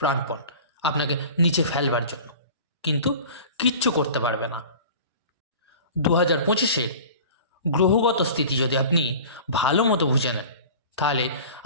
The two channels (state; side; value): inverted; both; correlation -0.39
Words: প্রাণপণ আপনাকে নিচে ফেলবার জন্য, কিন্তু কিচ্ছু করতে পারবে না। 2025-এর গ্রহগত স্থিতি যদি আপনি ভালো মতো বুঝে নেন, তাহলে